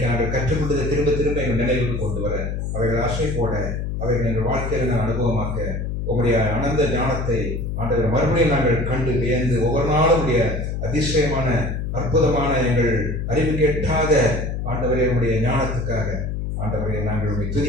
நாங்கள் கற்றுக்கொண்டதை திரும்ப திரும்ப எங்கள் நினைவுக்கு கொண்டு வர, அவைகள் ஆசை போட, அவைகள் எங்கள் வாழ்க்கையில் நாங்கள் அனுபவமாக்க உங்களுடைய அனந்த ஞானத்தை ஆண்டவரை மறுபடியும் நாங்கள் கண்டு வியந்து ஒவ்வொரு நாளும் உடைய அதிசயமான அற்புதமான எங்கள் அறிவு கேட்டாத ஆண்டவரை உடைய ஞானத்துக்காக ஆண்டவரை நாங்கள் உடைய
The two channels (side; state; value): left; noise; hum, 3 dB below the sound